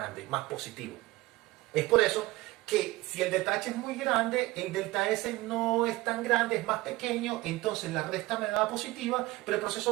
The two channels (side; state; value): left; quieter; 19.5 dB